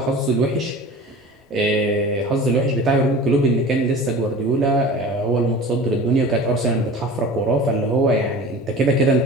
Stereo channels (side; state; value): both; normal; correlation 0.38